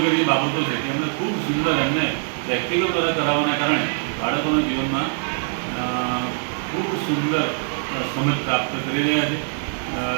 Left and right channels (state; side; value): silent; left; 64 dB below the other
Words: બાબતો છે, તેમણે ખૂબ સુંદર એમને પ્રેક્ટિકલ દ્વારા કરાવવાના કારણે બાળકોના જીવનમાં ખૂબ સુંદર સમજ પ્રાપ્ત કરી રહ્યા છે,